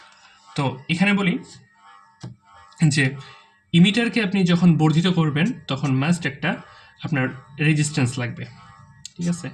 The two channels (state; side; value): identical; both; correlation 1.00